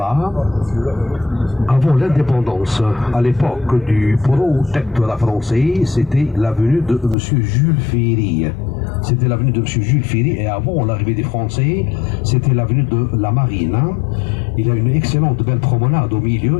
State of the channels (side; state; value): right; drops out; at 7.2 s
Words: Avant l'indépendance, à l'époque du protectorat français, c'était l'avenue de M. Jules Ferry. C'était l'avenue de M. Jules Ferry, et avant l'arrivée des Français, c'était l'avenue de la Marine. Il y a une excellente belle promenade au